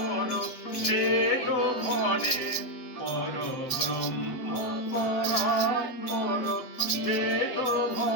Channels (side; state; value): right; late; 7.8 ms